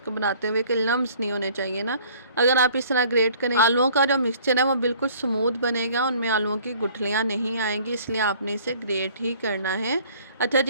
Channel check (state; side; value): inverted; both; correlation -0.54